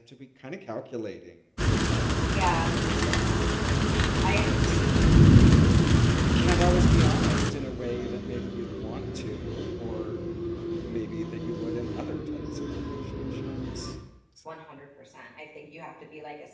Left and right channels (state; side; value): identical; both; correlation 1.00